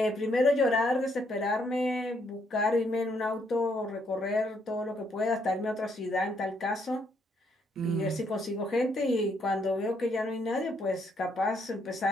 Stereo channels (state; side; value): normal; both; correlation 0.73